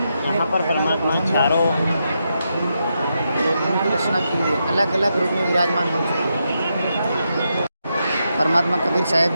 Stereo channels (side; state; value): both; inverted; correlation -0.84